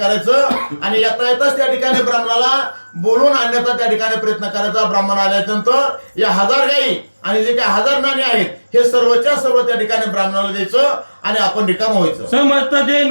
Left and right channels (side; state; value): both; inverted; correlation -1.00